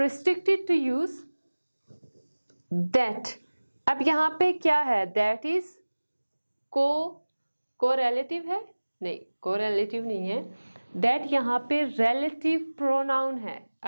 to use that। अब यहाँ पे क्या है, that is co-relative है, नहीं कोरिलेटिव नहीं है, दैट यहाँ पे रिलेटिव प्रोनाउन है।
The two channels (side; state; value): both; inverted; correlation -1.00